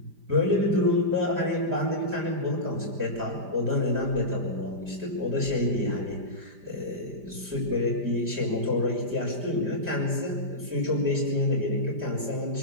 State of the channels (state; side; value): late; left; 5.0 ms